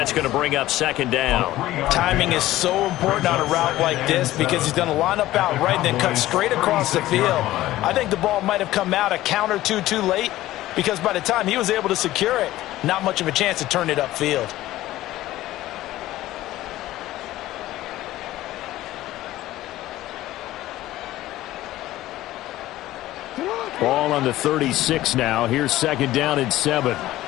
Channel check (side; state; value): right; quieter; 15.5 dB